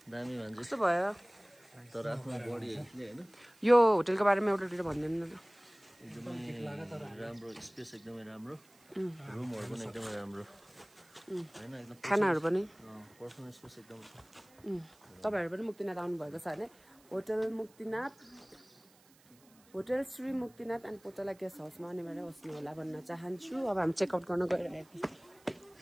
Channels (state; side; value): noise; right; hiss, 28 dB below the sound